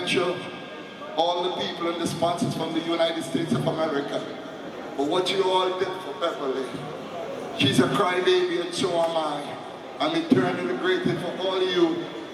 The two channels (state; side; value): identical; both; correlation 1.00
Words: all the people and the sponsors from the United States of America, for what you all did for Beverly. She's a crybaby and so am I. I'm eternally grateful for all of you